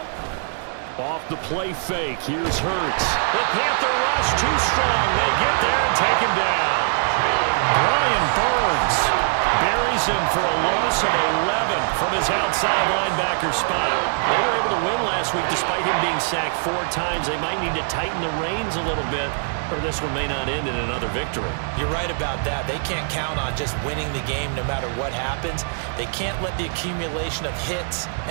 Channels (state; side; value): silent; left; 56 dB below the other